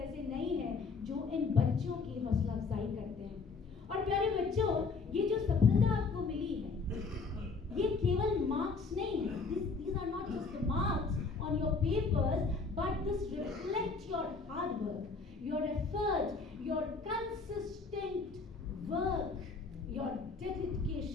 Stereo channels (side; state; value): right; quieter; 4.4 dB